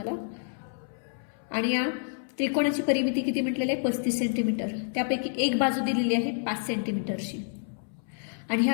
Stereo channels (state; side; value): silent; right; 59 dB below the other